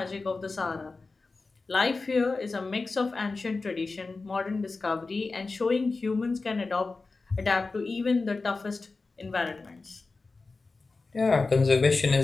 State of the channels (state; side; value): quieter; right; 3.8 dB